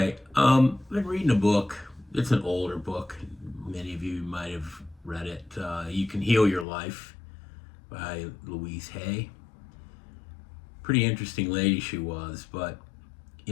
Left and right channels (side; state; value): right; drops out; at 6.7 s